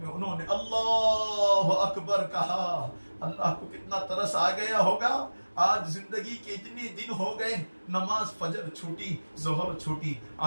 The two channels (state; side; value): inverted; both; correlation -1.00